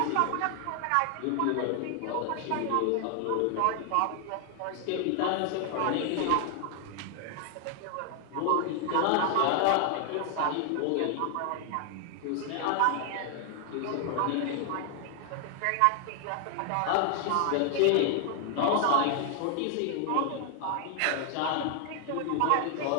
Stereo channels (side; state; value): both; different; correlation 0.00